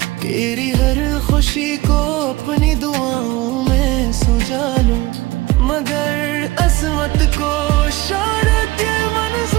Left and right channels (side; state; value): left; quieter; 19.5 dB